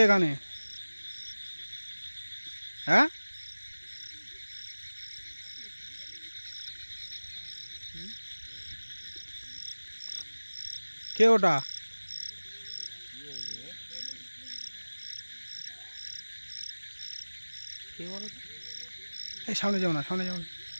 গানে? হ্যাঁ কে ওটা? কে বলো তো? এই সামনে যাও না, সামনে যাও না।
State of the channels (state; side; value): inverted; both; correlation -1.00